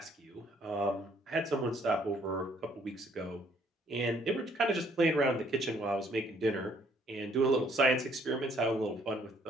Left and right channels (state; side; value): normal; both; correlation 0.64